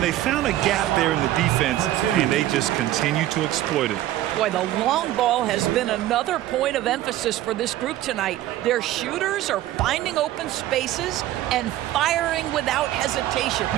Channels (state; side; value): quieter; left; 14.2 dB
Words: they found a gap there in the defense, and they just continue to exploit it. Boy, the long ball has been another point of emphasis for this group tonight. Their shooters are finding open spaces and firing without hesitation.